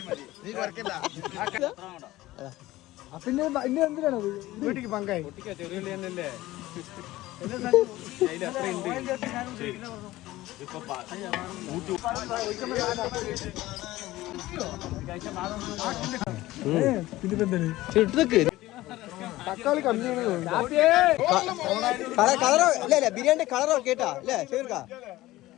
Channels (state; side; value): quieter; right; 17.2 dB